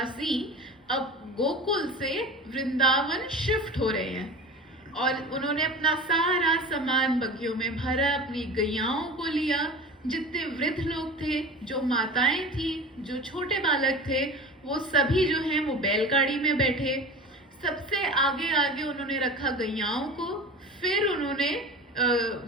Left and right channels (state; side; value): normal; both; correlation 0.34